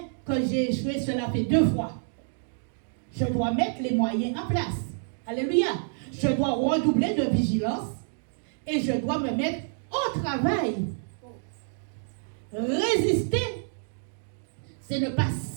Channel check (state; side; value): silent; left; digital silence